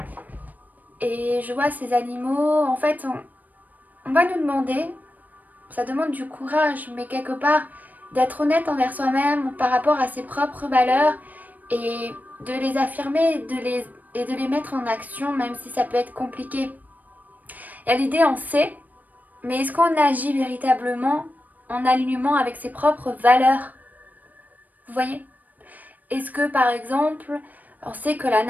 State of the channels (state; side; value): late; left; 0.082 ms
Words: et je vois ces animaux, en fait, on va nous demander, ça demande du courage, mais quelque part d'être honnête envers soi-même par rapport à ses propres valeurs et de les affirmer et de les mettre en action, même si ça peut être compliqué. Et à l'idée, on sait, mais est-ce qu'on agit véritablement en alignement avec ses propres valeurs? Vous voyez? Est-ce que par exemple, on sait que la